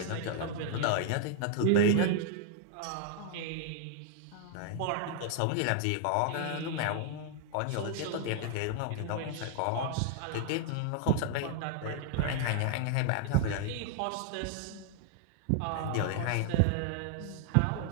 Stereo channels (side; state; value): both; different; correlation 0.00